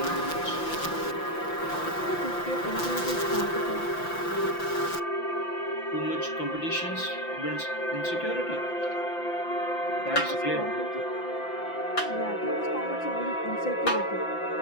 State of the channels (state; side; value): late; right; 5.9 ms